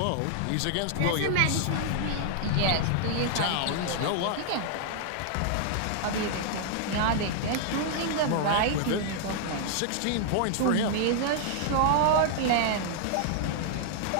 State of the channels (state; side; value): different; both; correlation -0.01